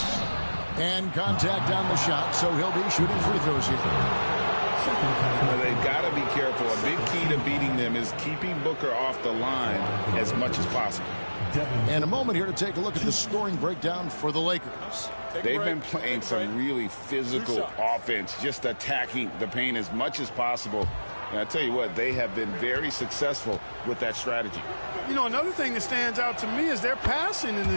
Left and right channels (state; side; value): inverted; both; correlation -1.00